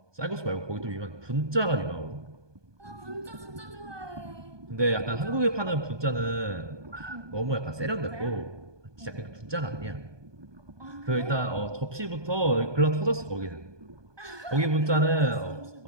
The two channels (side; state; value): left; late; 1.2 ms